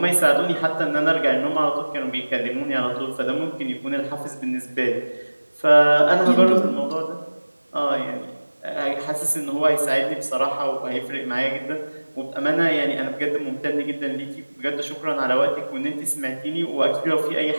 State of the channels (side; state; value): both; inverted; correlation -1.00